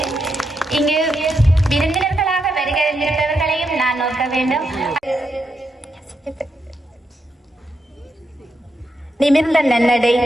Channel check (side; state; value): both; normal; correlation 0.83